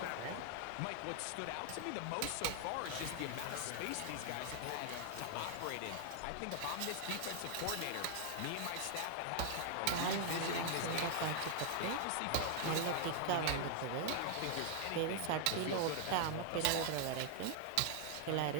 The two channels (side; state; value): both; different; correlation 0.00